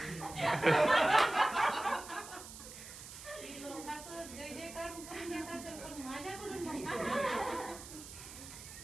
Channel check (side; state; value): right; noise; hiss, 13 dB below the sound